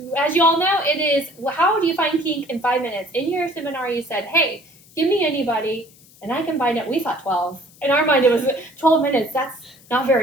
you all know, it is, how do you find kink in 5 minutes? In your seminar, you said, hey, give me anybody, and I can find it. We thought 12. In our mind, it was 12 minutes. That's not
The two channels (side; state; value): left; noise; hiss, 26 dB below the sound